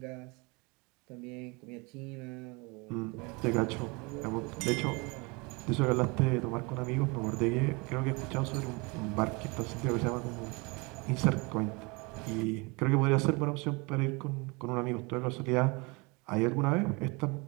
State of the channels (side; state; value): left; quieter; 28.0 dB